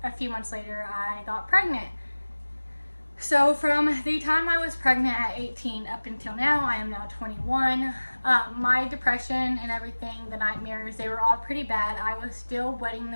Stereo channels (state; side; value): inverted; both; correlation -1.00